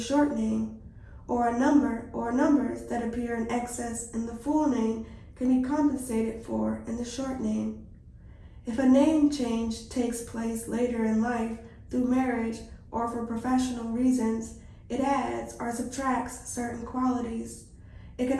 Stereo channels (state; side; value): identical; both; correlation 1.00